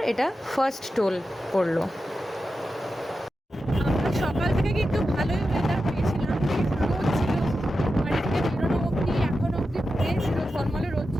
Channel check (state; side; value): normal; both; correlation 0.90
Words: এটা 1st টোল পড়লো। আমরা সকাল থেকে কিন্তু ভালোই ওয়েদার পেয়েছিলাম, রোদ ছিল, বাড়ি থেকে বেরোনো অবধি এখন অবধি ফ্রেশ ছিল, ঝলমলে রোদ